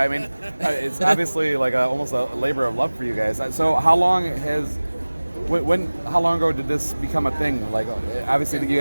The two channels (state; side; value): inverted; both; correlation -1.00